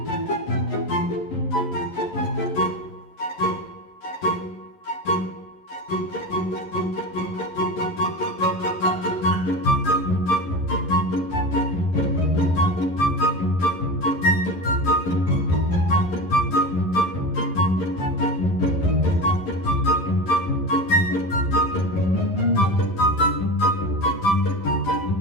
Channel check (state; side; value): late; right; 11 ms